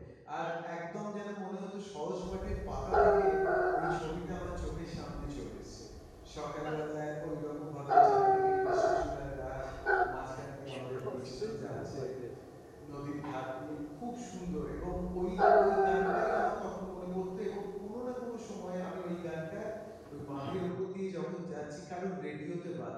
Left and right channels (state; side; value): identical; both; correlation 1.00